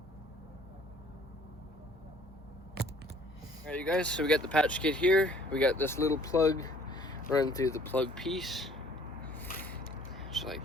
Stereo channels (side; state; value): both; normal; correlation 0.56